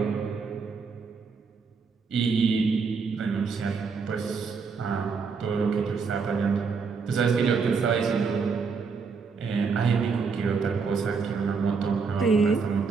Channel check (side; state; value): left; quieter; 5.2 dB